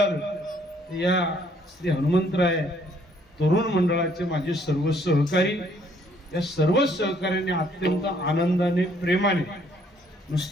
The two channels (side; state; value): both; normal; correlation 0.64